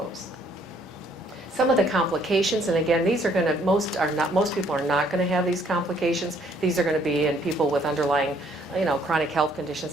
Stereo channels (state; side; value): normal; both; correlation 0.64